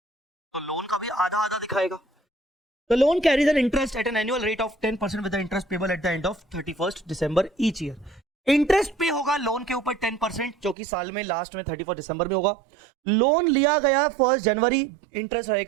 लोन का भी आधा आधा दिखाएगा। The loan carries an interest at an annual rate of 10% with the interest payable at the end of 31st December each year। Interest पे होगा लोन के ऊपर 10%, जो कि साल में लास्ट में 31 दिसंबर में होगा। लोन लिया गया 1 जनवरी, इंटरेस्ट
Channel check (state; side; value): drops out; left; at 10.8 s